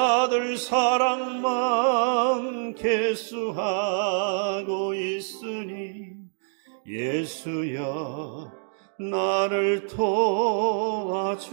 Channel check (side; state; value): left; silent; digital silence